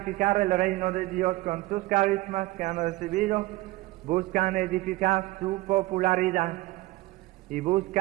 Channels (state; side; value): quieter; left; 19.5 dB